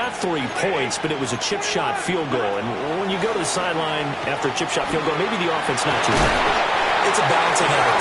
3 points, but it was a chip shot field goal. And when you go to the sideline after a chip shot field goal, maybe the offense not too bad. It's a balancing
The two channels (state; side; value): identical; both; correlation 1.00